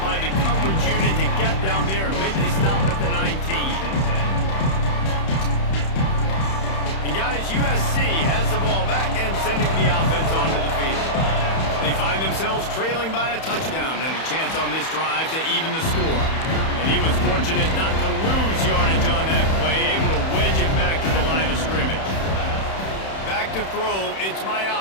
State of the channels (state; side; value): late; right; 31 ms